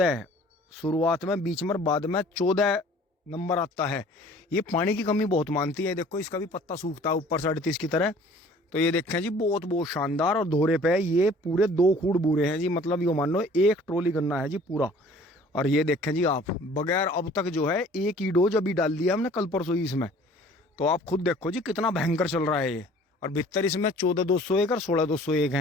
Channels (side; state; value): both; normal; correlation 0.51